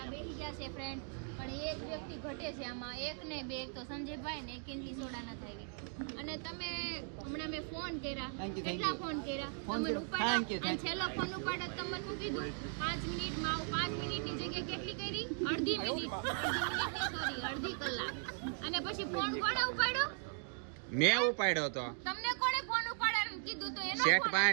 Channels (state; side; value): silent; left; 52 dB below the other